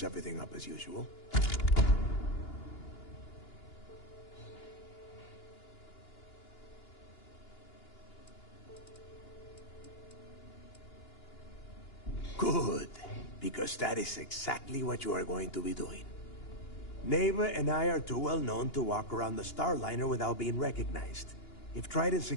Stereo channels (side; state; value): right; late; 2.9 ms